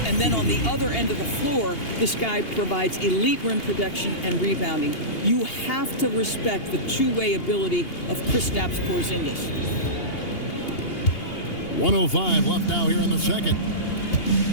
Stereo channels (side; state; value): right; late; 2.8 ms